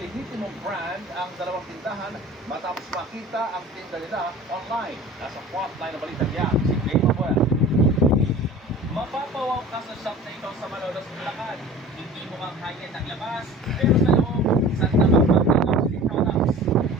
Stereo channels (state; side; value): normal; both; correlation 0.41